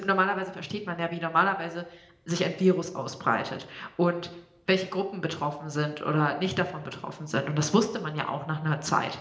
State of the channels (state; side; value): identical; both; correlation 1.00